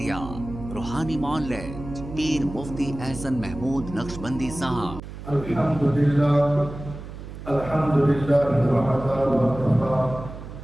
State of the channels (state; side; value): noise; right; hum, 12 dB below the sound